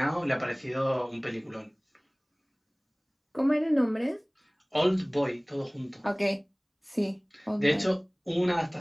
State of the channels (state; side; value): identical; both; correlation 1.00